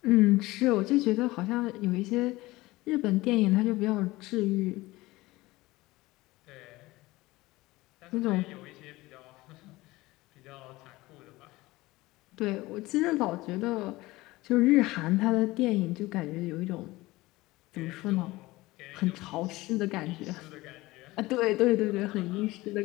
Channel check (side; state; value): right; quieter; 19.7 dB